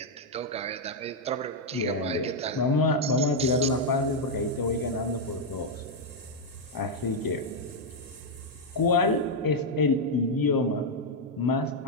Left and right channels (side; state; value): both; normal; correlation -0.01